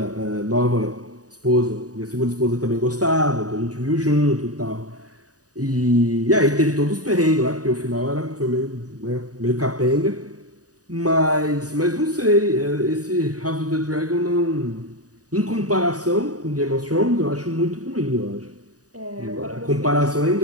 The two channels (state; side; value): late; left; 0.67 ms